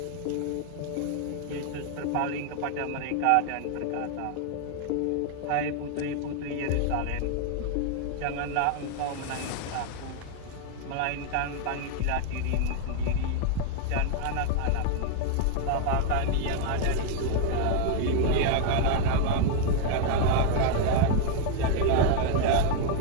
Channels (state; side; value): different; both; correlation 0.00